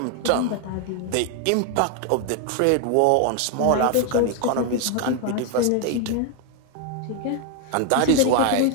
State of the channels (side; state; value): both; different; correlation 0.01